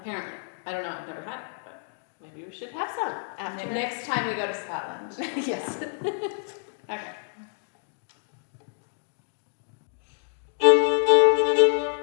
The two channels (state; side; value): silent; right; digital silence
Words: I don't know, I've never had it, but Maybe we should have some after. next time we go to Scotland. Yes. Okay.